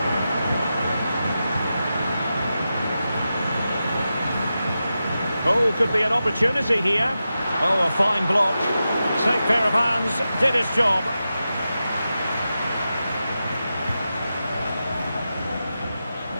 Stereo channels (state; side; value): inverted; both; correlation -0.91